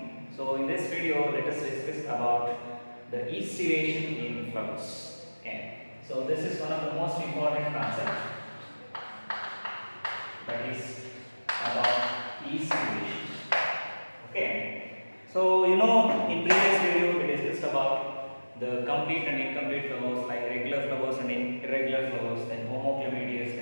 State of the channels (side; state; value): both; inverted; correlation -1.00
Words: So in this video, let us discuss about the estivation in flowers. Okay. So this is one of the most important concepts, that is about estivation. Okay. So in previous video we discussed about the complete and incomplete flowers, like regular flowers and irregular flowers, then homoclamadeous,